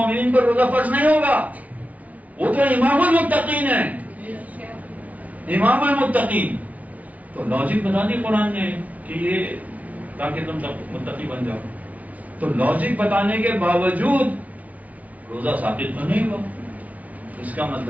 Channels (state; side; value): late; left; 0.070 ms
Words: پر روزہ فرض نہیں ہوگا؟ وہ تو امام المتقین ہے، امام المتقین. تو لاجک بتا دی قرآن نے کہ یہ تاکہ تم متقی بن جاؤ. تو لاجک بتانے کے باوجود روزہ ثابت تو نہیں ہوا. اس کا